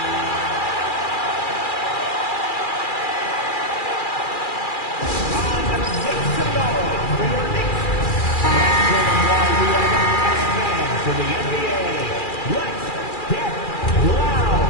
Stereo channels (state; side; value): late; right; 2.4 ms